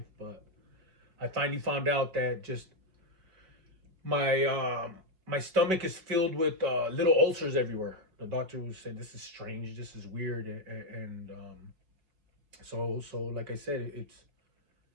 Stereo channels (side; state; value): left; late; 5.1 ms